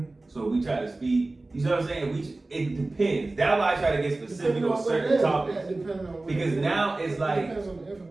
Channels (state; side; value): quieter; left; 3.0 dB